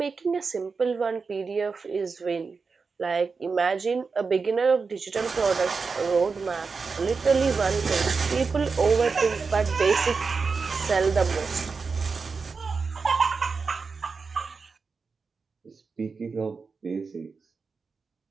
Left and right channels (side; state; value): left; quieter; 4.8 dB